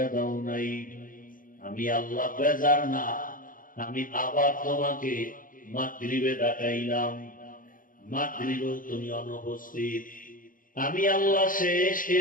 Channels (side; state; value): right; late; 0.40 ms